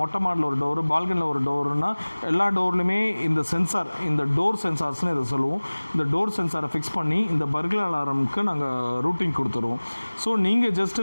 மொட்டை மாடில் ஒரு டோரு, பால்கனியில் ஒரு டோருன்னா எல்லா டோர்லையுமே இந்த சென்சார், இந்த டோர் சென்சார்ஸ்னு இதை சொல்லுவோம், இந்த டோர் சென்சாரை ஃபிக்ஸ் பண்ணி இந்த பர்க்லர் அலாரமுக்கு நாங்கள் ரூட்டிங் கொடுத்துருவோம். ஸோ நீங்கள்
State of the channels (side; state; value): both; inverted; correlation -1.00